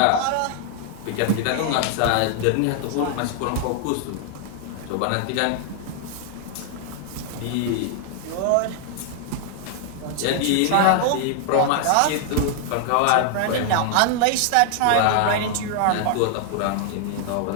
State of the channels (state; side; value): different; both; correlation 0.00